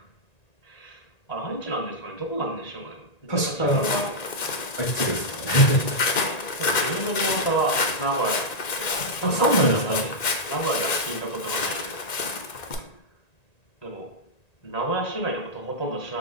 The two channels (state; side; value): late; right; 1.9 ms